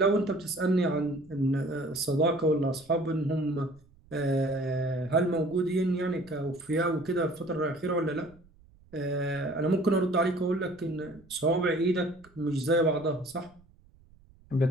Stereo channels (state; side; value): noise; right; rumble, 27 dB below the sound